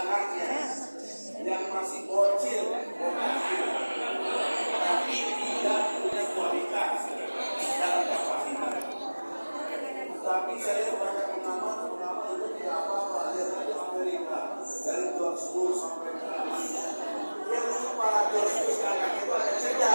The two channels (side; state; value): both; inverted; correlation -1.00